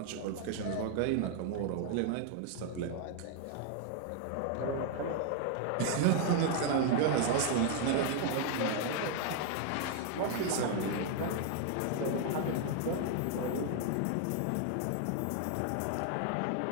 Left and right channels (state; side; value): different; both; correlation 0.00